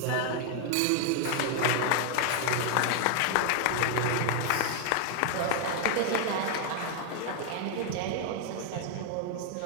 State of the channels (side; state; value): both; different; correlation 0.00